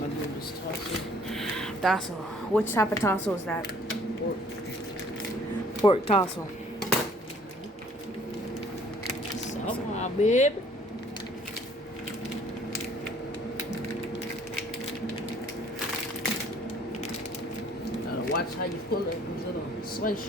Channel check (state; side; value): normal; both; correlation 0.57